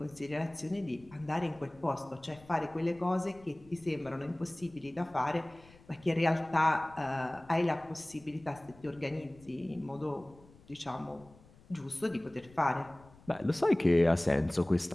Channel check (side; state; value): left; noise; rumble, 24 dB below the sound